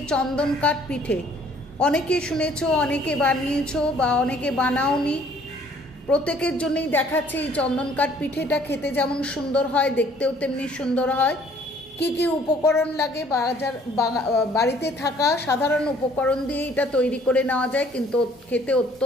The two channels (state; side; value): normal; both; correlation 0.58